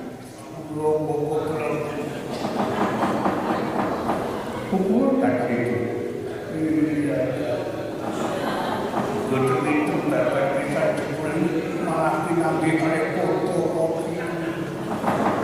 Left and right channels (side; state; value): both; identical; correlation 1.00